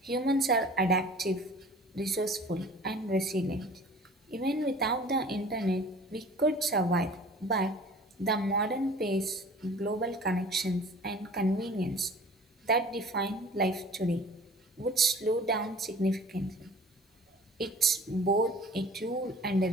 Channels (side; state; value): both; normal; correlation 0.45